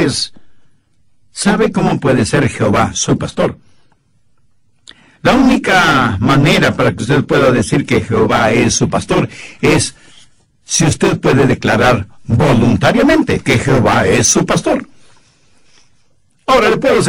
¿sabe cómo puede ser Jehová su pastor? La única manera para que usted pueda decir que Jehová es su pastor es si usted puede declarar voluntariamente que Jehová es su pastor. Ahora le puedo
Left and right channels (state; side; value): identical; both; correlation 1.00